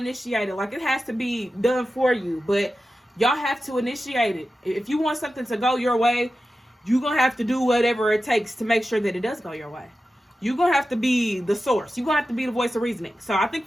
it. Like, it has to be done for you, but y'all have to initiate it. If you want something to go your way, you're going to have to do whatever it takes to make sure that it does go your way. You're going to have to be the source. You're going to have to be the voice of reasoning. So I think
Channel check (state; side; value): normal; both; correlation 0.93